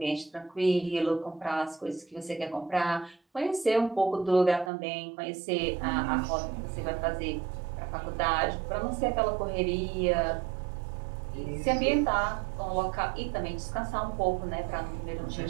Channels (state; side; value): drops out; left; at 4.7 s